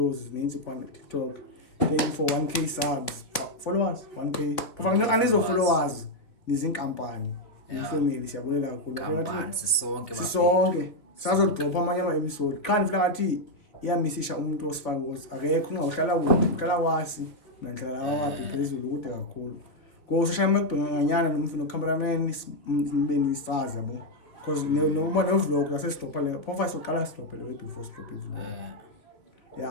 ninzi kwa TikTok. Thank you for 1k subs. Followers 1k. Kufanele anizo followers nizinkampani. Ifamily siyabulela kakhulu. Kampani sisonke bafethu. Sisonke. Sazodropha amanye ama-episode. Qha nifila ngathi iyamisisha umuntu osifaka ukuthi akekho ungahlala kude uhlala kwasi nanhlala kwakhe phezulu kude kakhulu. Go social makubhenganyana nomfino cameraman nibe nisazi yabo. Because noma no vlog la sesitopha le profile soqala sitopha le before stop vlog.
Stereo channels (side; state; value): right; late; 3.1 ms